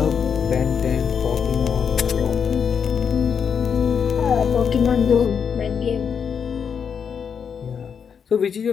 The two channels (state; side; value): quieter; right; 7.0 dB